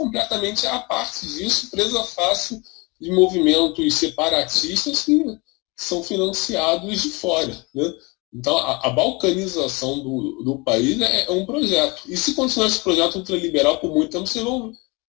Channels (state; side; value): quieter; right; 27.1 dB